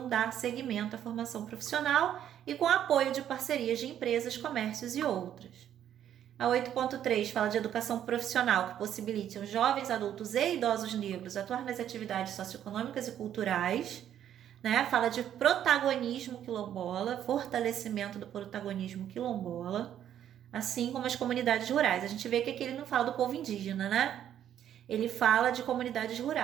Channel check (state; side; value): quieter; left; 10.4 dB